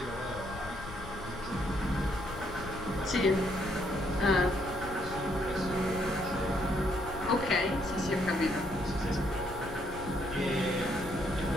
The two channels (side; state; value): left; noise; rumble, 12 dB below the sound